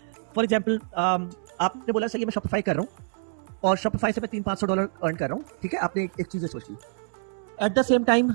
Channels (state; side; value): silent; left; digital silence